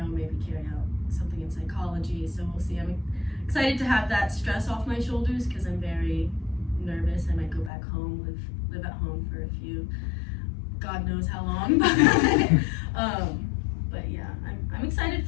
maybe carry out something in psychology. So we'll see. I'm excited to have that stress off my shoulders because I'm very nervous. I might go back home, live at home for a few, God knows how long. But yeah, I'm excited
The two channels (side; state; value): right; drops out; at 7.7 s